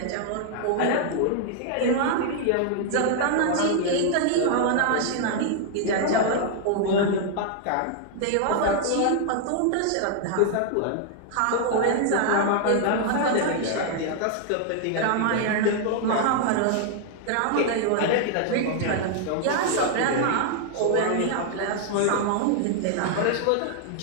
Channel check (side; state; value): both; different; correlation 0.00